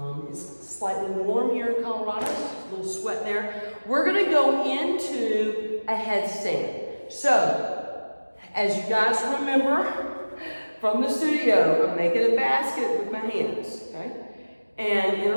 It's slightly warm here in Colorado, a little sweat there. We're going to go into a headstand. So, as you guys remember from the studio, I'm making a basket with my hands, okay? And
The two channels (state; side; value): inverted; both; correlation -1.00